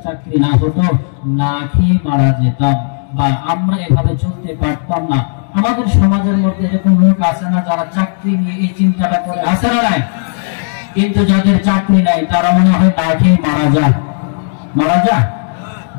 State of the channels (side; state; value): right; silent; digital silence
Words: চাকরি না হতো না খেয়ে মারা যেতাম, বা আমরা এভাবে চলতে পারতাম না। আমাদের সমাজের মধ্যে এরকম লোক আছে না যারা চাকরি নিয়ে এই চিন্তাটা করে? আছে না নাই? কিন্তু যাদের চাকরি নাই তারা মনে হয় না খেয়ে মারা যায়।